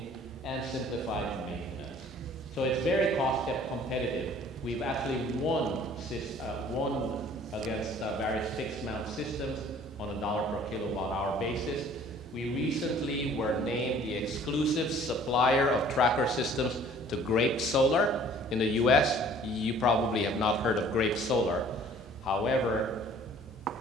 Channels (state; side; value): normal; both; correlation 0.53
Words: and simplified maintenance. So it's very cost competitive. We've actually won against various fixed mount systems on a $ per kilowatt hour basis. We recently were named the exclusive supplier of tracker systems to Grape Solar in the US. You probably have not heard of Grape Solar. However,